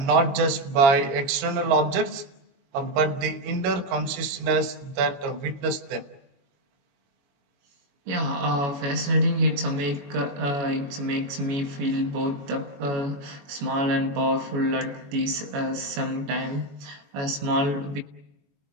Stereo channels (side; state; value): left; late; 21 ms